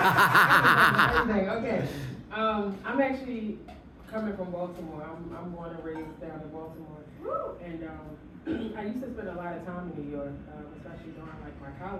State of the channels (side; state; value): both; identical; correlation 1.00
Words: Okay. I'm actually coming from Baltimore. I'm born and raised down in Baltimore. And I used to spend a lot of time in New York, especially during like my